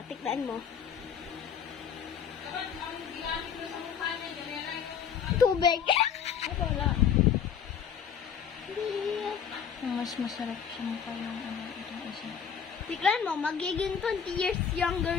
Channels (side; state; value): right; quieter; 7.6 dB